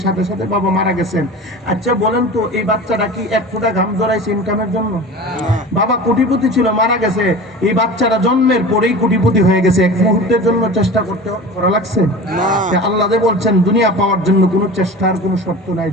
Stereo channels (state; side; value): normal; both; correlation 0.35